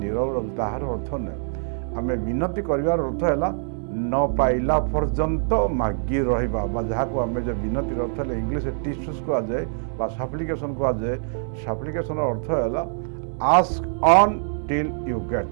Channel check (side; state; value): left; silent; 62 dB below the other